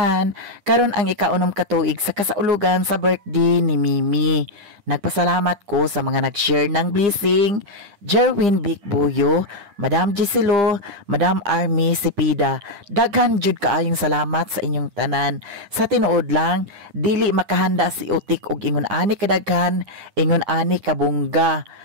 Karon ang ikaunom katuig sa kasaulugan sa birthday ni Mimi. Nagpasalamat ko sa mga nag-share ng blessing, Jerwin Bicbuyo, Madam Giselo, Madam Army Sipida. Daghan jud kaayong salamat sa inyong tanan. Sa tinuod lang, dili makahanda si Utik og ingon ani kadaghan, ingon ani kabungga.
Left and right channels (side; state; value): left; late; 9.9 ms